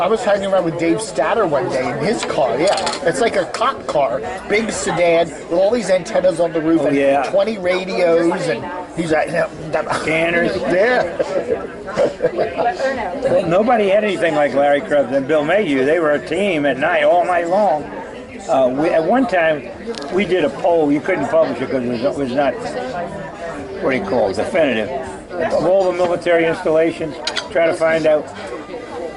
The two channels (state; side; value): identical; both; correlation 1.00